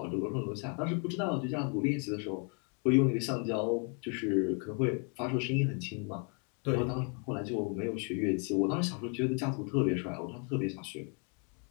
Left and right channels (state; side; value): quieter; right; 38.0 dB